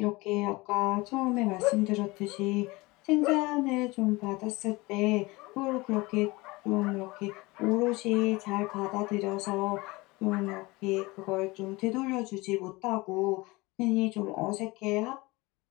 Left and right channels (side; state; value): right; quieter; 22.8 dB